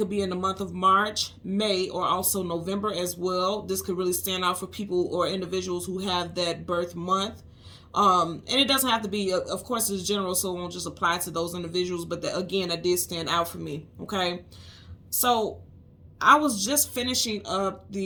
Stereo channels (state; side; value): identical; both; correlation 1.00